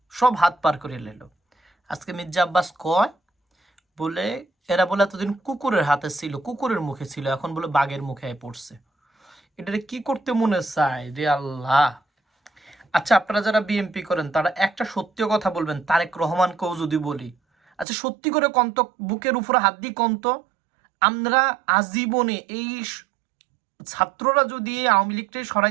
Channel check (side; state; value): left; drops out; at 17.9 s